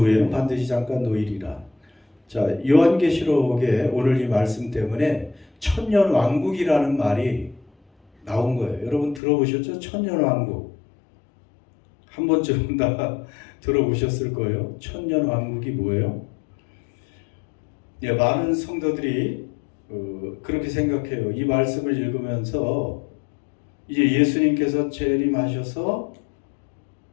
후에는 반드시 잠깐 노일이라. 자, 요한계시록에 오늘 이 말씀 때문에 천년왕국이라는 말이 나온 거예요. 여러분 들어보셨죠? 천년왕국. 한 번쯤은 다 들어보셨을 거예요. 천년왕국이 뭐예요? 예, 많은 성도들이 그렇게 생각해요. 이 말씀을 읽으면서 이제 예수님께서 재림하셔서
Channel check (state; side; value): drops out; right; at 9.2 s